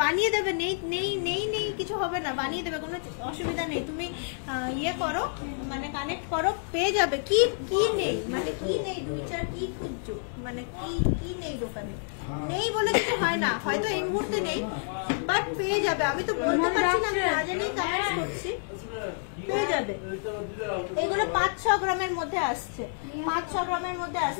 বানিয়ে দেবে। নেই নেই নেই নেই কিছু হবে না, বানিয়ে দেবে, কোনো অসুবিধা নেই। তুমি ইয়ে করো, মানে কানেক্ট করো, পেয়ে যাবে। কি কি নেই মানে কি নেই, 2-4 কি খুঁজছো, মানে কি নেই দোকানে? নেই বলে কিছু হয় না, হয়তো এই মুহূর্তে নেই, বাট পেয়ে যাবে। আমি তো বলতে পারছি না, আমি না জেনেই কমেন্টস করছি, পেয়ে যাবে। এগুলো 5-6 গ্রামের মধ্যে আসছে, 5-6 গ্রামের মধ্যে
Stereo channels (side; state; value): right; silent; digital silence